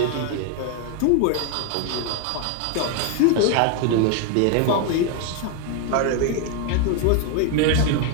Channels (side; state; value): both; different; correlation 0.01